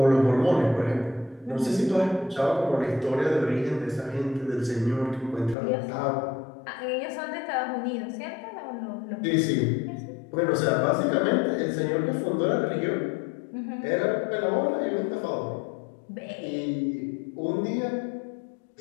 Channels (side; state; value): right; drops out; at 5.6 s